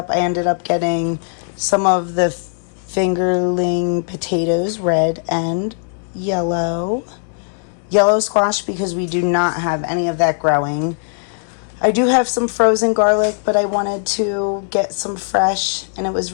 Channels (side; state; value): right; silent; digital silence